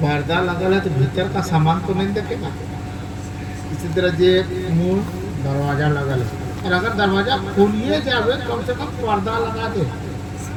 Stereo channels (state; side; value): identical; both; correlation 1.00